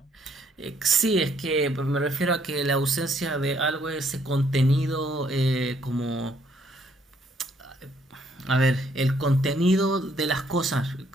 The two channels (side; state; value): both; normal; correlation 0.68